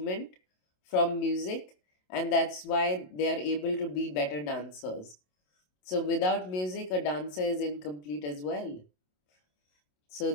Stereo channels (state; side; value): late; right; 27 ms